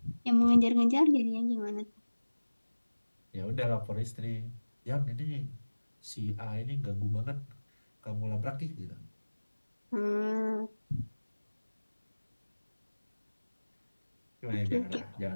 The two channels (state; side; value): inverted; both; correlation -1.00